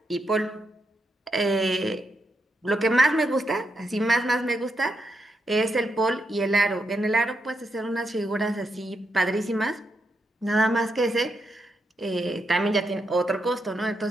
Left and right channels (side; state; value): both; normal; correlation 0.82